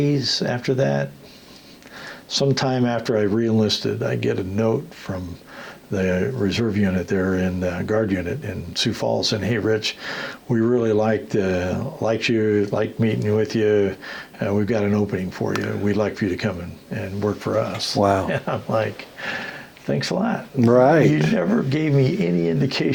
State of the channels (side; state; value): both; identical; correlation 1.00